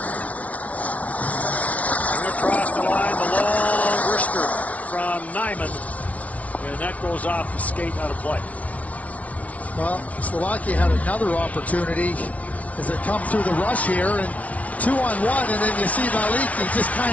Across the line, the long wrister from Nyman, and that goes off the skate out of play. Well, Slovakia had another opportunity as they come through the rush here, and 2-on-1, and then you see Malik, he just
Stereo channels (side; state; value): right; late; 0.068 ms